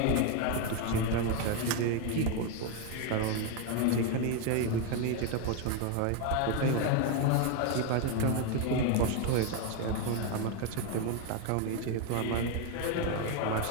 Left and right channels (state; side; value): different; both; correlation 0.01